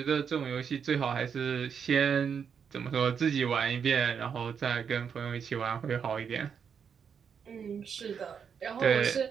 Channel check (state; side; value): quieter; left; 7.0 dB